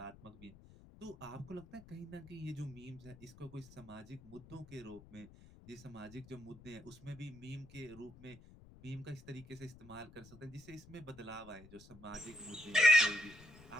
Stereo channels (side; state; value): left; noise; rumble, 20 dB below the sound